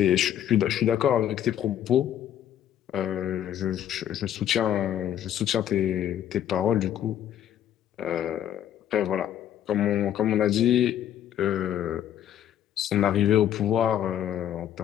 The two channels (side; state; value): right; quieter; 10.8 dB